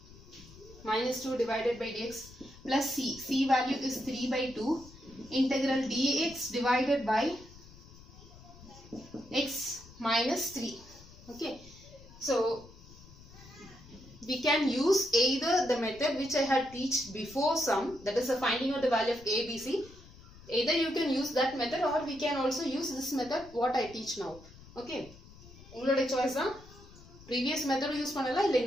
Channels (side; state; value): left; noise; rumble, 20 dB below the sound